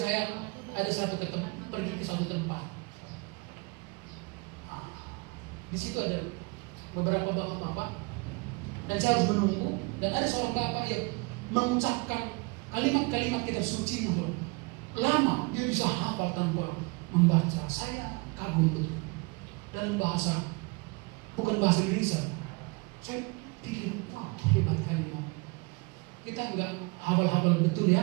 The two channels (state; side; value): quieter; left; 28.2 dB